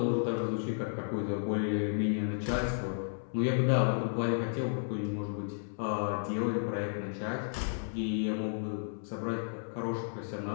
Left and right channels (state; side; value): silent; right; 56 dB below the other